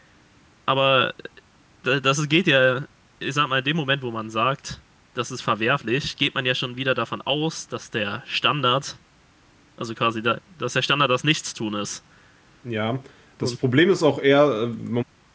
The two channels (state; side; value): identical; both; correlation 1.00